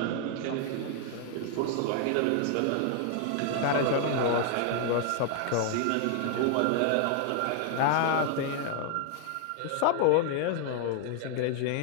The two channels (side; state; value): both; different; correlation 0.00